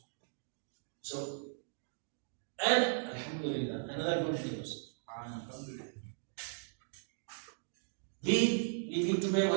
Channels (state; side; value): silent; left; digital silence